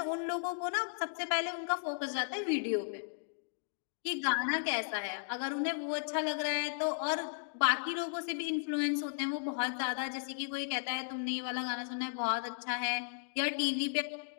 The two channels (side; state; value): right; silent; digital silence